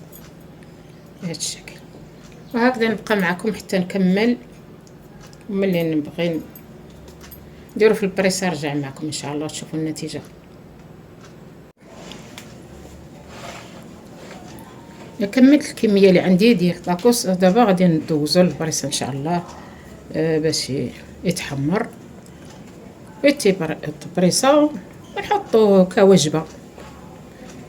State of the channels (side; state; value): both; identical; correlation 1.00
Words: بهذا الشكل وهكذا نبقى معكم حتى نكمل، وملي نبغي نديرو في البريسه نرجع معكم ان شاء الله تشوفوا النتيجه. كملت الكميه اللي عندي ديال الطاكوس. دابا غادي ندوزو للبريسه ان شاء الله باش يتحمر البريسه ونحطوه كوجبه.